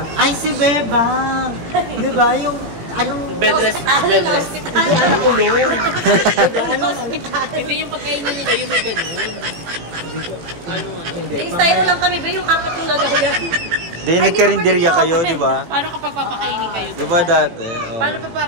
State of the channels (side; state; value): left; late; 18 ms